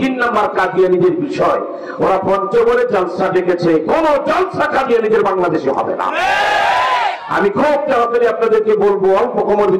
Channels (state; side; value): identical; both; correlation 1.00